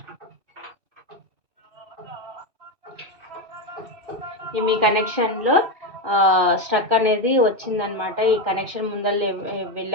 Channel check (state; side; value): late; left; 2.6 ms